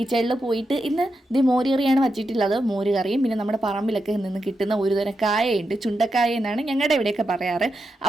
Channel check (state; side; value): normal; both; correlation 0.87